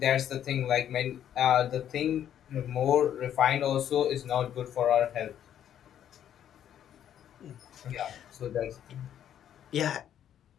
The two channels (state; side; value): quieter; right; 10.2 dB